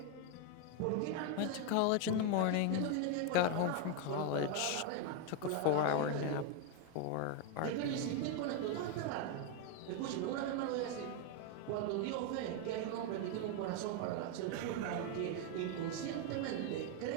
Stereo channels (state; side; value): different; both; correlation 0.01